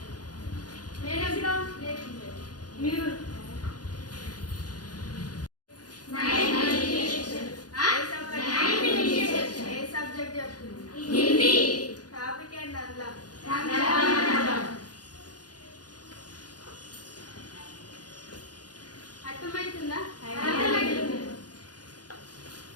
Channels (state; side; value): late; right; 0.69 ms